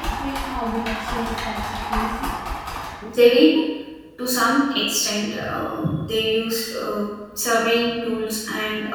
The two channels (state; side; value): identical; both; correlation 1.00